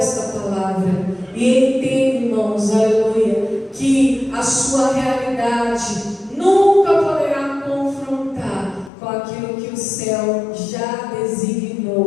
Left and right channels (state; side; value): drops out; right; at 8.9 s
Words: esta palavra e entenda, irmãos, aleluia, que a sua realidade nunca poderá confrontar com aquilo que o céu já